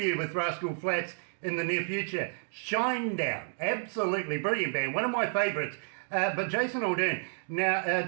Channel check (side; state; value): left; silent; 57 dB below the other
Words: with Rascal Flatts in the near future. Shinedown, absolutely brilliant band, one of my favourites. But Jason Aldean, now